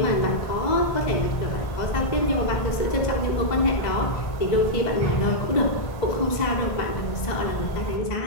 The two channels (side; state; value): right; late; 1.5 ms